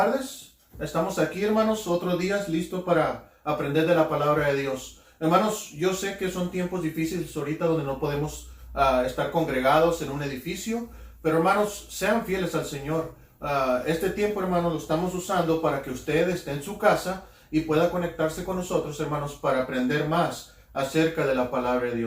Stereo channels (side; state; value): both; identical; correlation 1.00